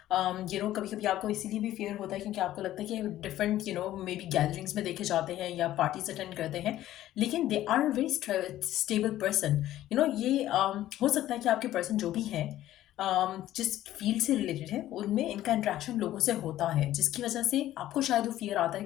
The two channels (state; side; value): quieter; right; 13.7 dB